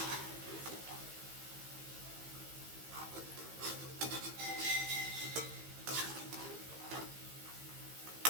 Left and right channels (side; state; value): left; late; 15 ms